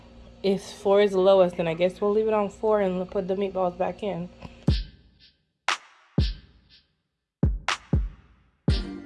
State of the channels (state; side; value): identical; both; correlation 1.00